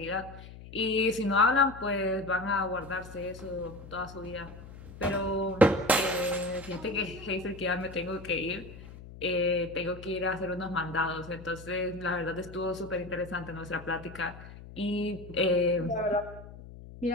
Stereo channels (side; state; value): left; noise; hum, 15 dB below the sound